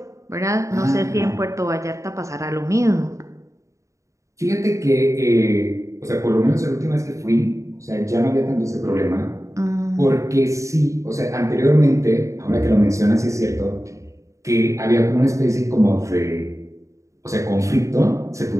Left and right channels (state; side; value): late; left; 0.15 ms